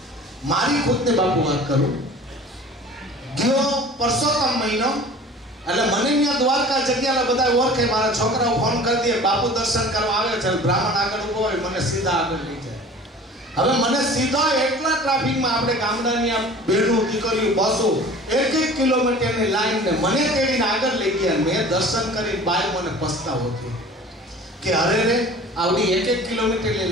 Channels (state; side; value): normal; both; correlation 0.43